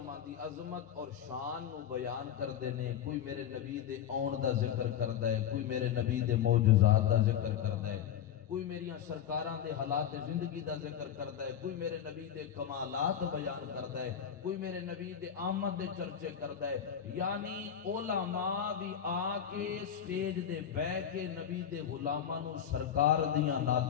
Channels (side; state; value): right; quieter; 9.3 dB